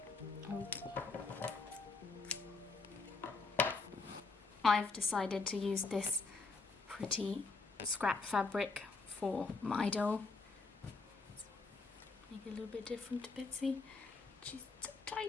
Oh. I've decided to use this pretty scrap fabric for my doll. Make it a little bit different to Bitsy. She's so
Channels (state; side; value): quieter; right; 4.0 dB